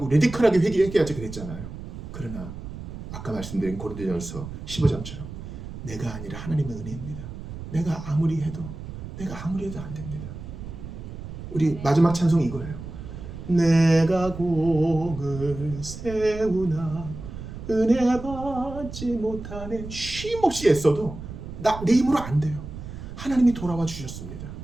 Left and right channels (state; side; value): noise; right; rumble, 10 dB below the sound